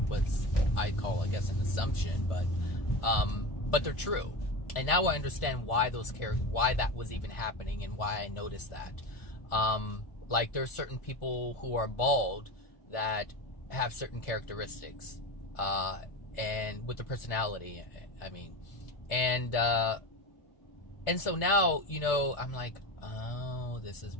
was I call, I guess, an assumption, but they're true. And now I understand why why that was even happening and why I noticed that. Like there's certain people who are bald that have certain characteristics, and with the personality, I mean, and so now, you know, I'm like, oh, this is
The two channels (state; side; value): late; right; 1.4 ms